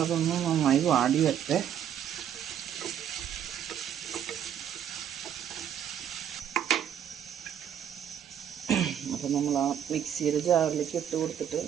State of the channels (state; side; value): quieter; left; 9.5 dB